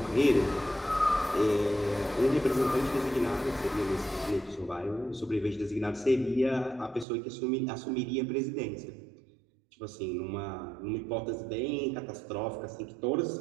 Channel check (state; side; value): drops out; left; at 7.1 s